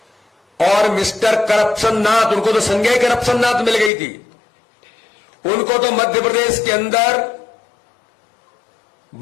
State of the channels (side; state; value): right; drops out; at 3.9 s